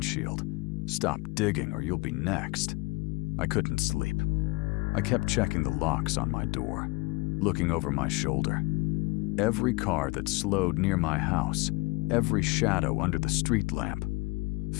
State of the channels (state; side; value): quieter; right; 23.8 dB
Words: "Stop digging or you'll be next," I couldn't sleep. I kept checking the locks on my door, looking over my shoulder. Every car that slowed near my house, every shadow under the street lamp,